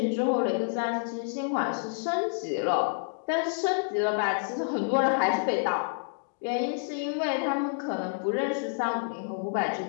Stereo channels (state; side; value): silent; right; digital silence